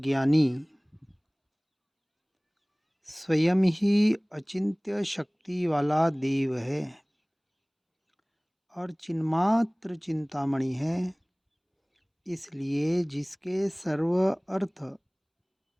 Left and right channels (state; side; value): identical; both; correlation 1.00